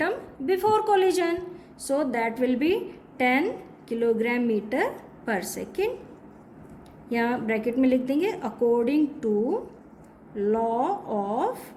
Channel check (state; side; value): identical; both; correlation 1.00